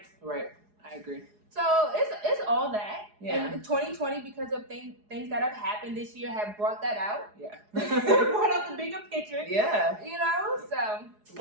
Right. I agree. So it's all that. Yeah. And 2020, because of things that have happened this year, have brought that out. Yeah. Brought out the bigger picture. Yeah. So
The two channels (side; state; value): left; late; 4.8 ms